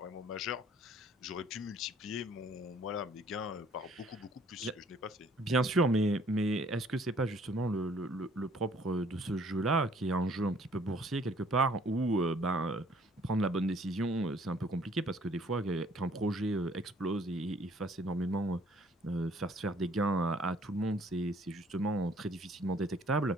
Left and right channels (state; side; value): normal; both; correlation 0.59